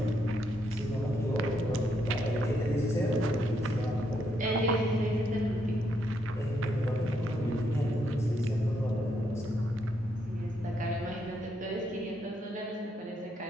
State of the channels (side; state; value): both; normal; correlation 0.77